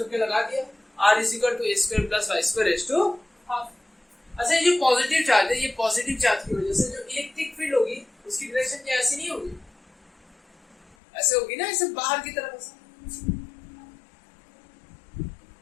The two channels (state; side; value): drops out; right; at 11.0 s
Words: लगा दिया, r is equal to a square plus y square raise to half. अच्छा ये जो पॉजिटिव चार्ज है, ये पॉजिटिव चार्ज की वजह से जो इलेक्ट्रिक फील्ड होगी उसकी डायरेक्शन क्या ऐसी नहीं होगी, ऐसे होगी ना, ऐसे बाहर की तरफ